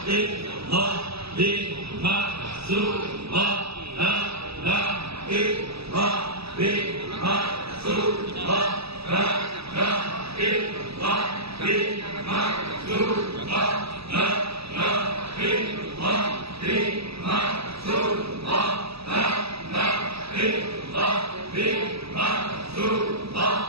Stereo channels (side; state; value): left; late; 0.77 ms